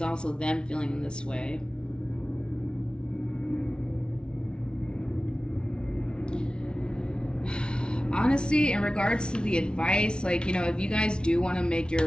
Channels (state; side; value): late; right; 0.056 ms